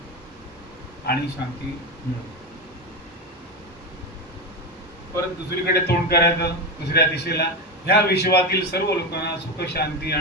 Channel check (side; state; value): both; normal; correlation 0.15